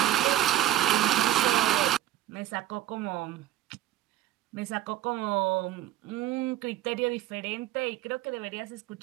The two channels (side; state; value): left; quieter; 13.4 dB